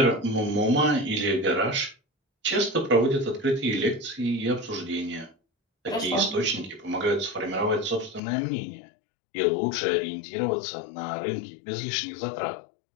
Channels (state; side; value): drops out; right; at 8.2 s